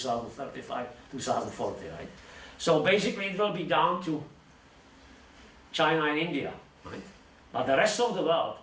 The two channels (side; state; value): both; identical; correlation 1.00